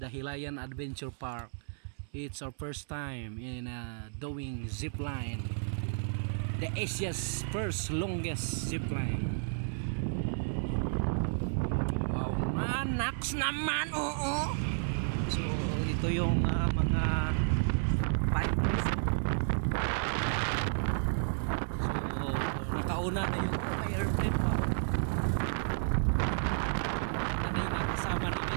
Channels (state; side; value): silent; left; digital silence